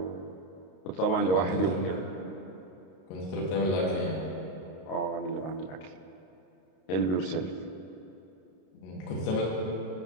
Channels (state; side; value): late; right; 32 ms